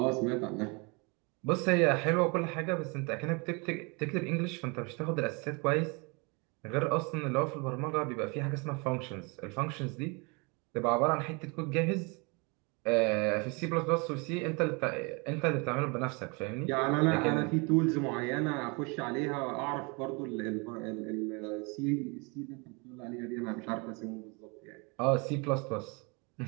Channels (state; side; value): quieter; left; 30.5 dB